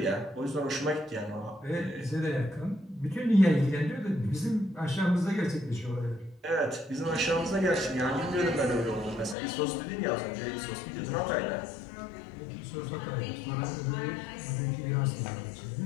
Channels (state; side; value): drops out; right; at 9.3 s